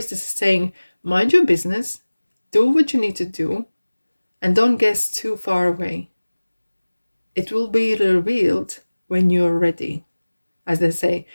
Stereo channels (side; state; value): both; inverted; correlation -1.00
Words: is saying, mind your business, do what you need to do, and don't guess too far away. It will be revealed when you're ready. As they say,